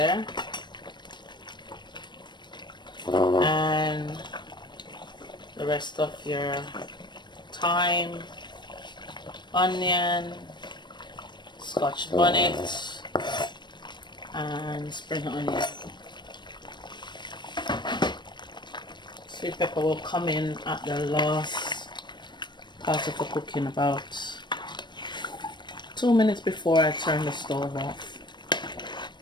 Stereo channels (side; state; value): right; late; 0.22 ms